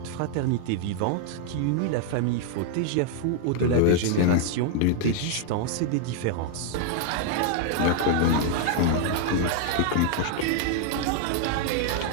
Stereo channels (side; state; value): both; different; correlation 0.00